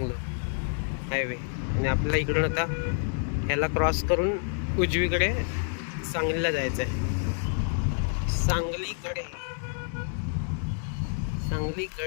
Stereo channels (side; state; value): right; silent; 59 dB below the other